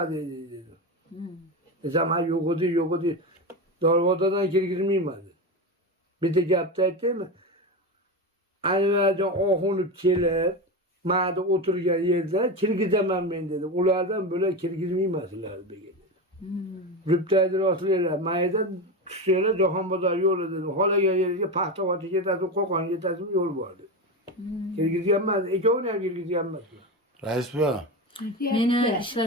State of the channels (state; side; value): normal; both; correlation 0.19